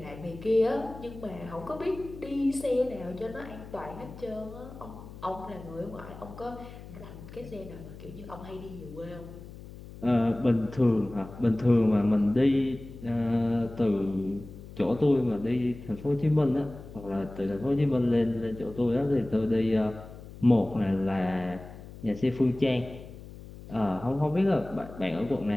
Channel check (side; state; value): left; noise; hum, 15 dB below the sound